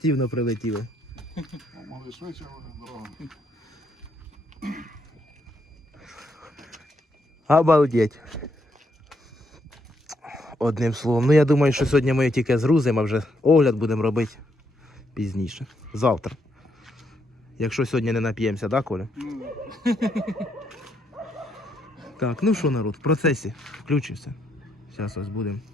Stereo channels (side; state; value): both; normal; correlation 0.76